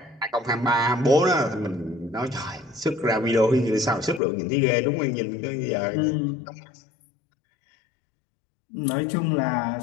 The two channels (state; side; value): drops out; right; at 4.2 s